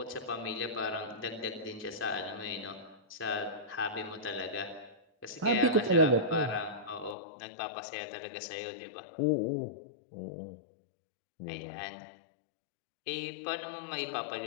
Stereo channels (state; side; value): drops out; right; at 7.2 s